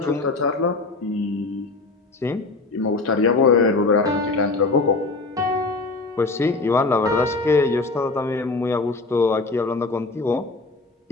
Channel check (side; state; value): right; quieter; 3.6 dB